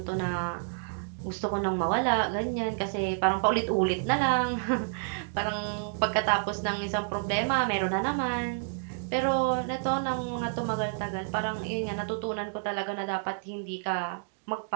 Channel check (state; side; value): silent; left; digital silence